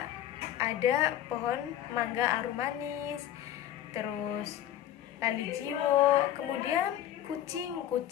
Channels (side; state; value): right; quieter; 11.9 dB